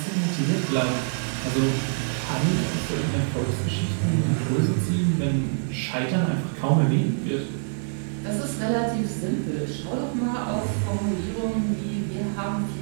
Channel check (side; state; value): left; silent; digital silence